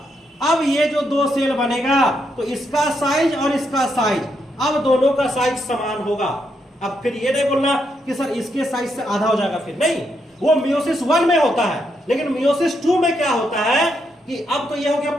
अब ये जो 2 सेल बनेगा तो इसका साइज और इसका साइज, अब दोनों का साइज समान होगा। अब फिर ये नहीं बोलना कि सर इसके साइज से आधा हो जाएगा, फिर नहीं, वो मियोसिस 1 में होता है। लेकिन मियोसिस 2 में क्या होता है कि अब तो ये हो गया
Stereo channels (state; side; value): normal; both; correlation 0.79